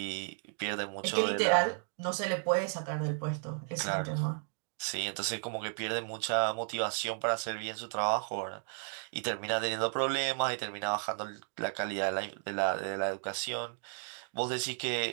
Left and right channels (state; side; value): silent; left; 55 dB below the other